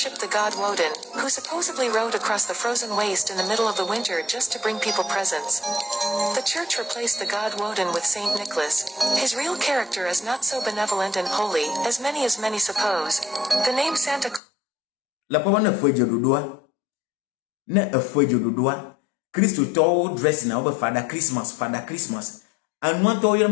the god Woden, who supposedly rode across the frozen waste in the middle of the winter just to bring people presents. The church replaced the god Woden with Saint Nicholas. His real character is not so benevolent and holy as many suppose. The name Santa Claus. La papa na fweje dodoa. Na afweje dodoa. Christo to dress na over Father Christmas. And want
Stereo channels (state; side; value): drops out; right; at 14.4 s